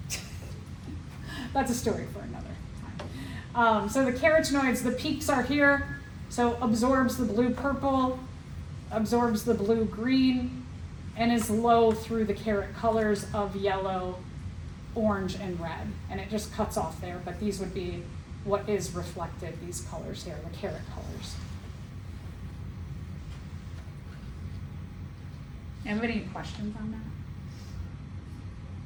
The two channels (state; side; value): identical; both; correlation 1.00